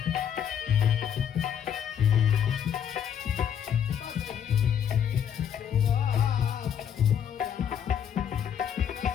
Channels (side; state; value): right; quieter; 8.7 dB